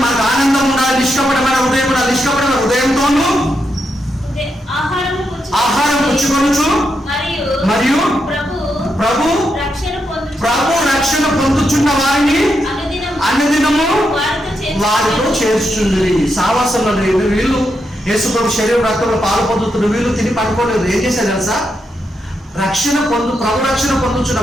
నిష్కపటమైన హృదయంతోను ఆహారం పుచ్చుకొనుచు మరియు ప్రభు రక్షణ పొందుచున్న వారిని అన్నదినము వారితో చేర్చుచుండ్రి. సావాసంలో లేదు వీళ్ళు, యేసు ప్రభు శరీర రక్తంలో పాలు పొందుతున్న వీళ్ళు తిని పడుకోలేదు. ఏం చేశారు తెలుసా? ప్రభు రక్షణ పొందుతున్న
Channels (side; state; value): both; normal; correlation 0.83